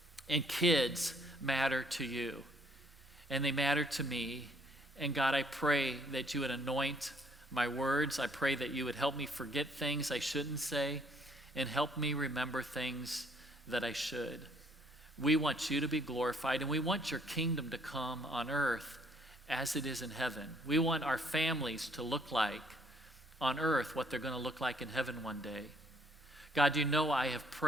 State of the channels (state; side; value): normal; both; correlation 0.65